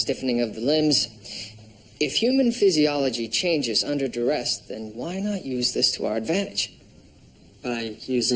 of the limbs. If human physiology changes under duress, then why not use this to our advantage? By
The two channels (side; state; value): both; identical; correlation 1.00